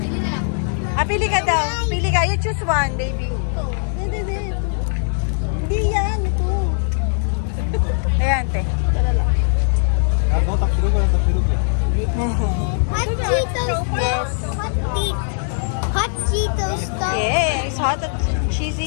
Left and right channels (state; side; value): silent; right; 66 dB below the other